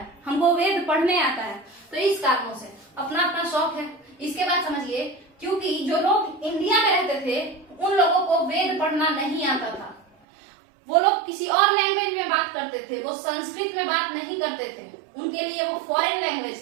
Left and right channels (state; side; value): drops out; left; at 10.1 s